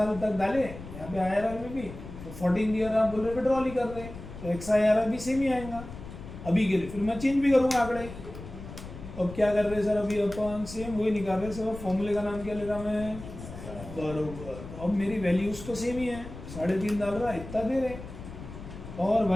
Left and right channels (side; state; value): left; noise; rumble, 12 dB below the sound